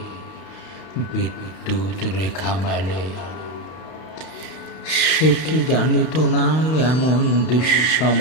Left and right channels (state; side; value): late; right; 32 ms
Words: বিদ্যুৎ রেখা মেলে। সে কি জানিত না এমন